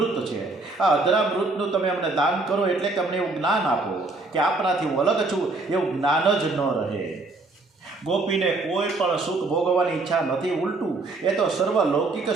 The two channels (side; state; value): left; quieter; 3.4 dB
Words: છે. આ અધરામૃતનું તમે અમને દાન કરો, એટલે કે અમને એવું જ્ઞાન આપો કે આપણાથી હું અલગ છું એવું જ્ઞાન જ ન રહે. ગોપીને કોઈ પણ સુખ ભોગવવાની ઈચ્છા નથી, ઉલટું એ તો સર્વ લૌકિક